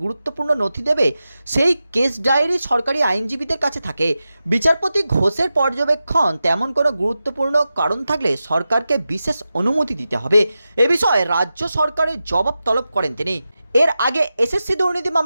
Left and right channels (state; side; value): inverted; both; correlation -0.92